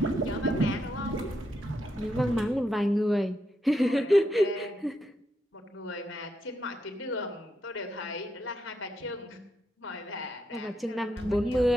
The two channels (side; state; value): both; normal; correlation 0.81